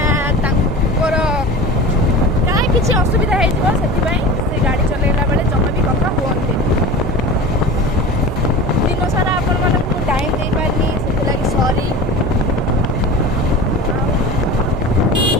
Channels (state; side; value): normal; both; correlation 0.34